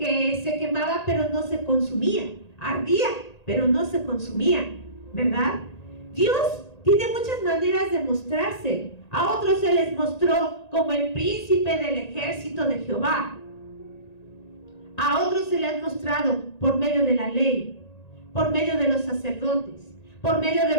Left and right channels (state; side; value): late; right; 1.9 ms